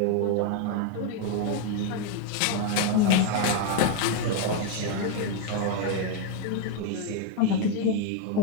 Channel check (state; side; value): different; both; correlation 0.01